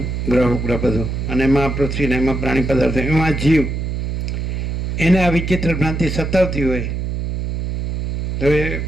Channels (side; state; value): right; noise; hum, 2 dB below the sound